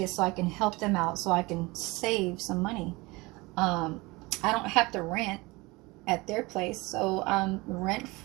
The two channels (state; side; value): quieter; left; 23.4 dB